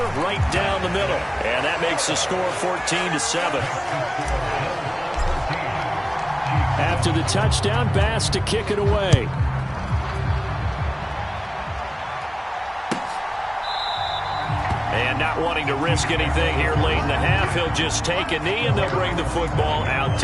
right down the middle. And that makes the score 14-7. After the touchdown, Bass to kick it away. And not wanting to risk anything here late in the half, he'll just take a knee, and they'll bring the football out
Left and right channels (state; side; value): identical; both; correlation 1.00